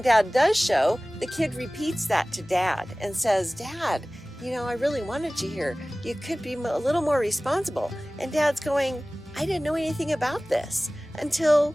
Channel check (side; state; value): both; normal; correlation 0.98